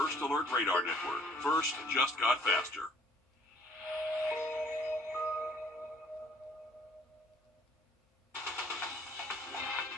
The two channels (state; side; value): normal; both; correlation 0.59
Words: Alert Radar Network. First just got faster.